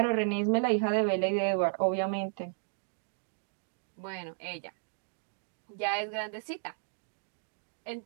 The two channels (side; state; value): left; silent; digital silence